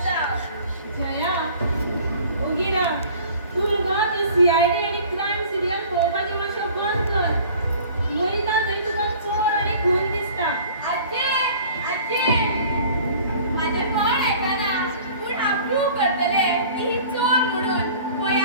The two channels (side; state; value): both; inverted; correlation -0.48